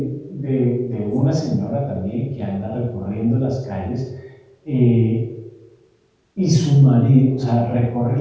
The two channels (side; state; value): both; identical; correlation 1.00